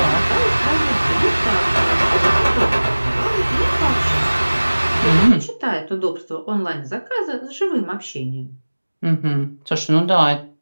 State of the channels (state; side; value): inverted; both; correlation -1.00